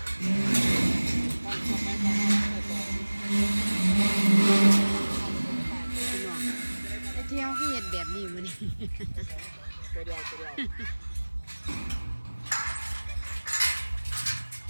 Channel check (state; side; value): inverted; both; correlation -1.00